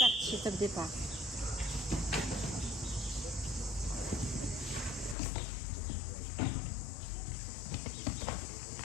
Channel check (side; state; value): right; drops out; at 5.2 s